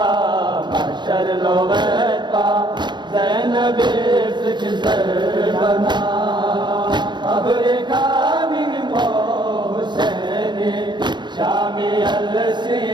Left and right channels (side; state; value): left; late; 0.22 ms